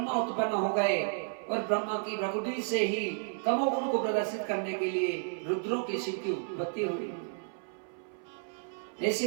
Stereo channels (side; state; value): left; silent; 56 dB below the other